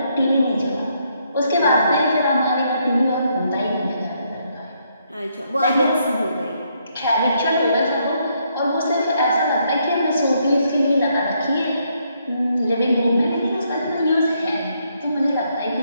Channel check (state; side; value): inverted; both; correlation -0.74